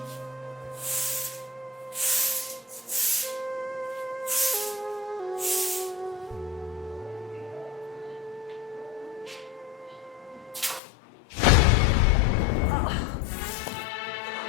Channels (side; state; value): right; drops out; at 10.8 s